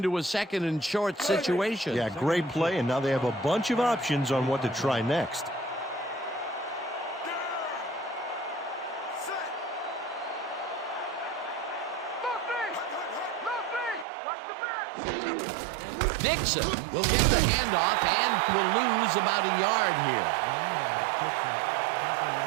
a second and short situation. Yeah, great play, and now they have a bunch of options on what to try next. Dixon will get the handoff and will lose about a yard here.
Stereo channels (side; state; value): left; drops out; at 14.1 s